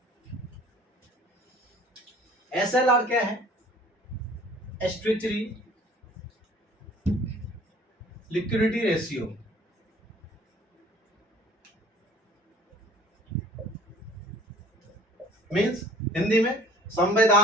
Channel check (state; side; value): normal; both; correlation 0.51